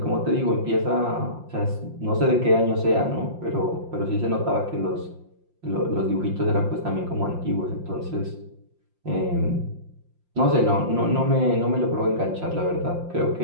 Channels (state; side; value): late; left; 5.7 ms